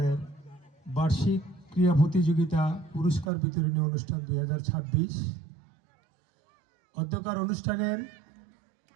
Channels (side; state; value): left; drops out; at 3.3 s